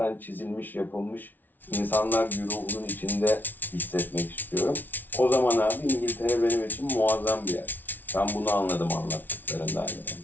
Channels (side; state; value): right; late; 0.086 ms